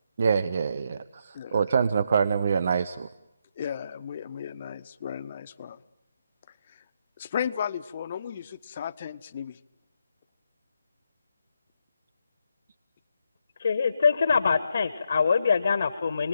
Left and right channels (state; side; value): inverted; both; correlation -0.80